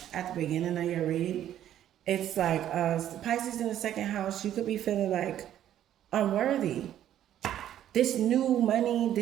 at the beginning of your read. It's like, Pisces in the second house, you could be feeling like unworthy. This new money,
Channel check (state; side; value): quieter; left; 11.3 dB